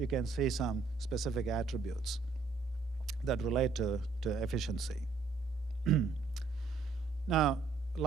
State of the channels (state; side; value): quieter; left; 4.4 dB